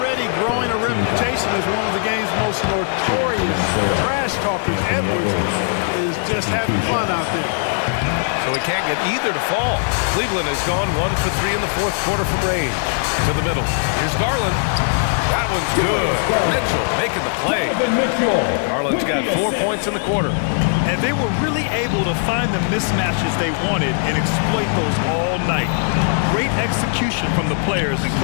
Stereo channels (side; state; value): right; silent; digital silence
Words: growing a reputation as one of the game's most notorious trash talkers, Edwards is just having fun out there. So he can't get either to fall. Cleveland has gone 1 for 3 in the fourth quarter from range. To the middle. Here's Garland. That one's good. Mitchell making the play. Garland's got 4 points in the quarter. And they were really able to find the mismatches they wanted and exploit those all night. Great execution from the players and